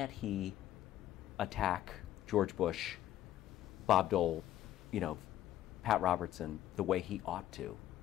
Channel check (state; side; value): quieter; right; 12.5 dB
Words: he attack George Bush, Bob Dole, Pat Robertson the way he ought to,